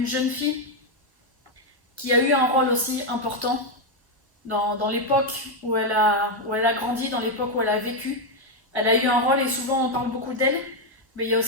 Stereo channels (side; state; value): both; normal; correlation 0.03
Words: jeune fille qui a eu un rôle aussi important dans l'époque où elle a grandi, dans l'époque où elle a vécu. Elle a eu un rôle et souvent on parle beaucoup d'elle, mais il y a